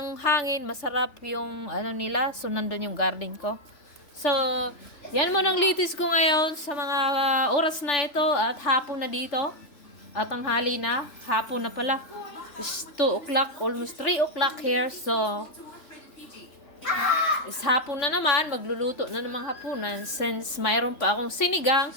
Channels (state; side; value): late; right; 3.4 ms